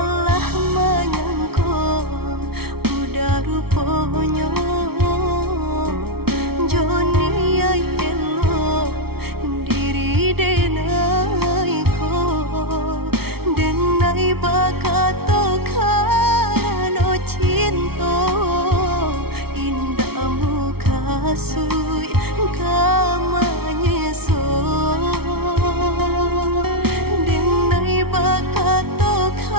menyangka udah rupanya Joni ay elo diri denai ko denai bakato karano cinta indah muka sui kamanya so denai bakato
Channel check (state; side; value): late; left; 0.95 ms